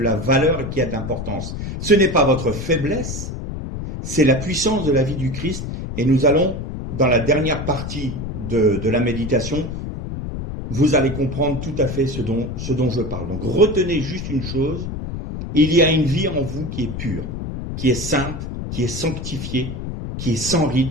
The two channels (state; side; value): noise; left; rumble, 6 dB below the sound